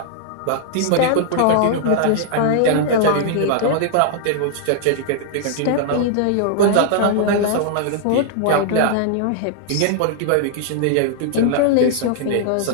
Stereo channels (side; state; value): both; different; correlation -0.01